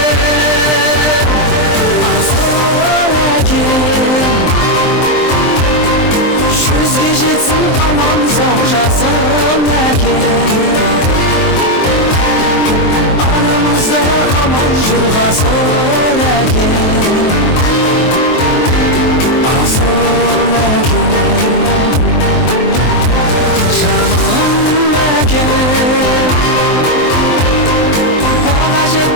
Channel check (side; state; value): right; late; 23 ms